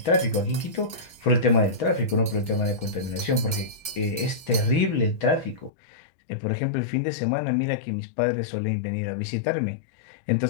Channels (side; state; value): right; drops out; at 5.7 s